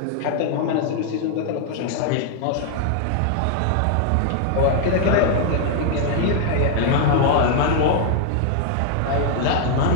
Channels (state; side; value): different; both; correlation 0.00